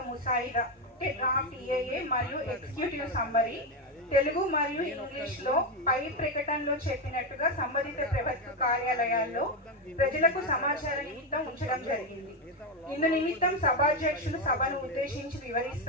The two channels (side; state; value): both; normal; correlation 0.09